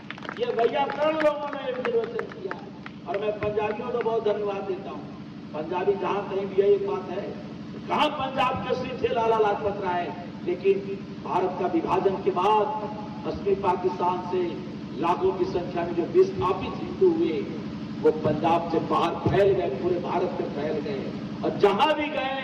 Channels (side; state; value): both; identical; correlation 1.00